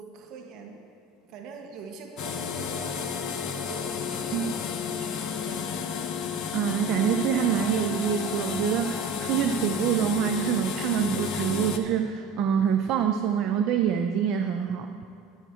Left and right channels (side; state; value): left; quieter; 4.1 dB